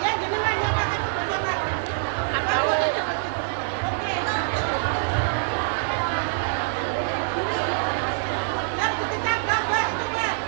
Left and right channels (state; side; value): silent; left; digital silence